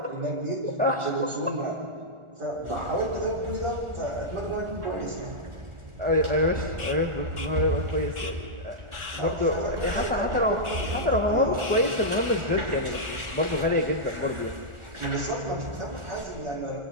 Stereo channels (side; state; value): left; late; 1.4 ms